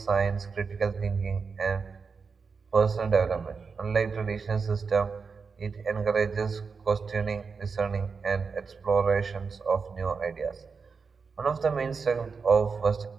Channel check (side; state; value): left; quieter; 5.2 dB